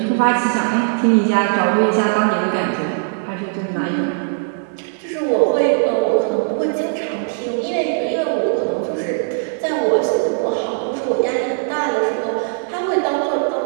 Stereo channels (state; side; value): silent; left; 62 dB below the other